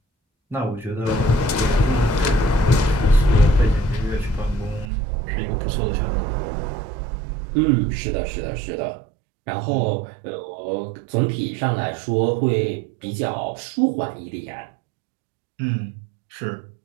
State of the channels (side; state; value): left; drops out; at 4.9 s